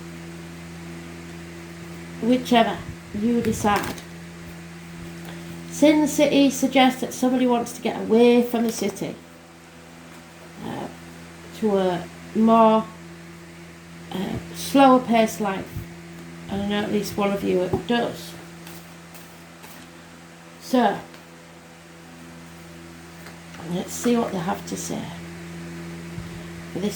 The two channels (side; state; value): both; identical; correlation 1.00